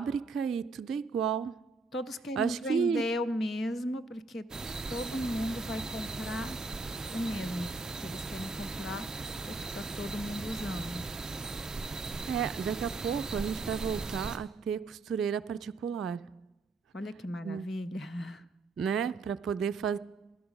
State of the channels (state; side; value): quieter; left; 3.7 dB